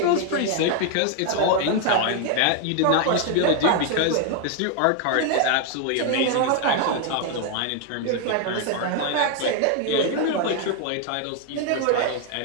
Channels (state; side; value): different; both; correlation 0.00